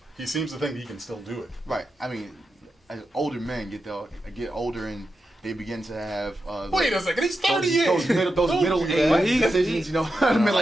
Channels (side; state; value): both; normal; correlation 0.88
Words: he seems to think he can still do it. Right. I mean, as older men get older and they begin to have Wait a second, he's 38. those middle age decisions,